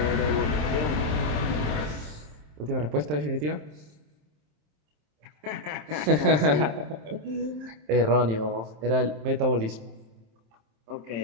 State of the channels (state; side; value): late; left; 27 ms